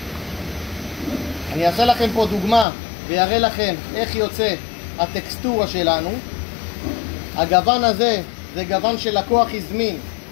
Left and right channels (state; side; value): drops out; right; at 2.7 s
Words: אני אעשה לכם פה דוגמה ויראה לכם איך יוצא הטקסטורה שלנו. הגוון הזה זה גוון שלקוח הזמין,